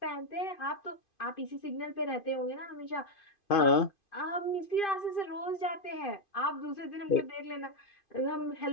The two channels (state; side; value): late; right; 2.5 ms